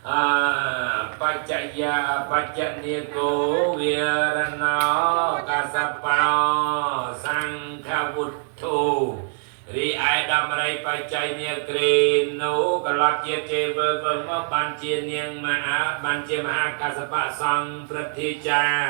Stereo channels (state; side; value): silent; left; 58 dB below the other